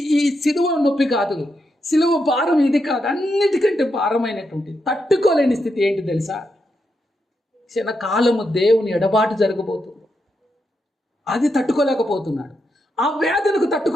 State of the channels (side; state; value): both; normal; correlation 0.84